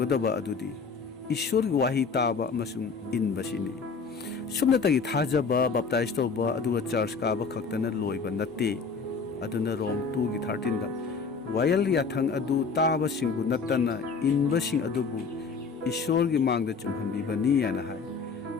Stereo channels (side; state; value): right; quieter; 5.0 dB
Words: अदुदी ईश्वरगी वाही ताबा अमसुंग इनबसिनी सुमनतगी थाजबा बप्ताइज तौबा अदुगा चर्च काबा खक्तना लोइबा नत्ते अदुना रोम 2 की 13 दा वायल याथंग अदु ताबसिंगबु नत्तना इनबसिंग अदुबु ईश्वर की मांगदा चुमहनबिबनी याना हाय